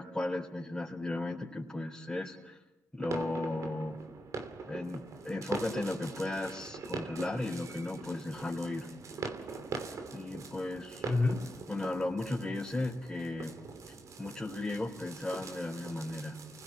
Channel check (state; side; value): normal; both; correlation 0.88